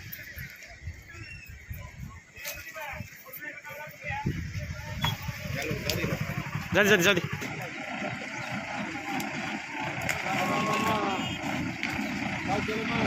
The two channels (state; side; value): identical; both; correlation 1.00